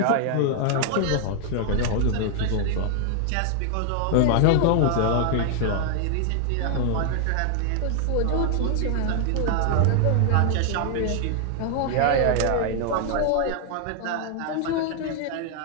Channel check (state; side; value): different; both; correlation 0.00